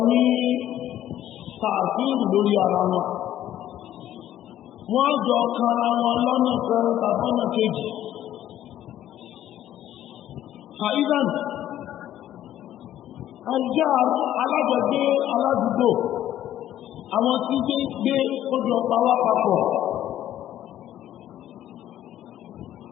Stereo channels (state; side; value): quieter; right; 12.3 dB